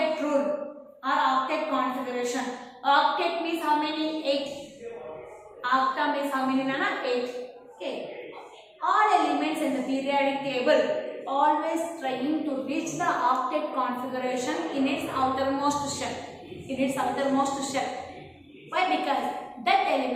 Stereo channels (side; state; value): both; identical; correlation 1.00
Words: rule or octet configuration. Octet means how many? 8. Octa means how many, Nana? 8. Okay. All elements in the periodic table always trying to reach the octet configuration in its outermost shell. In its outermost shell. Why? Because that